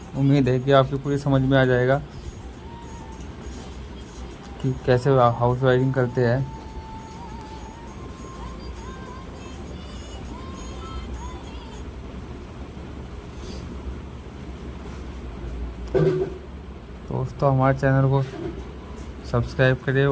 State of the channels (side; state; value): both; identical; correlation 1.00